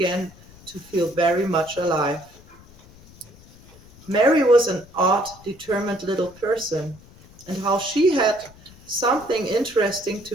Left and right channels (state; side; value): noise; left; rumble, 23 dB below the sound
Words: to feel very much alive. Mary was an odd, determined little person, and how she had something interesting to